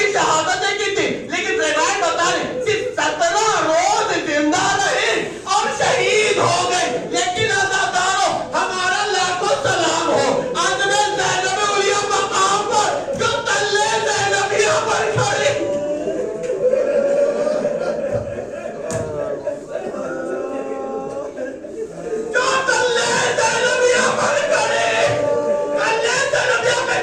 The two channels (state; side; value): identical; both; correlation 1.00